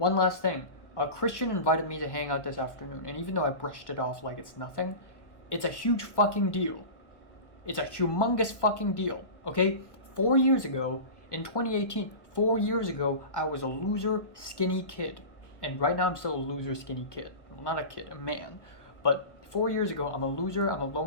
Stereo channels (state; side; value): late; right; 1.1 ms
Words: last thing. Cristian invited me to hang out this afternoon, and even though I brushed it off like it's nothing, it's a huge fucking deal. It's a humongous fucking deal, okay? 4 years ago, in 2018, 4 years ago, I was a loser, skinny kid. And right now I'm still a loser skinny kid. Well, not a kid, a man. But 4 years ago, I'm a loser, I'm a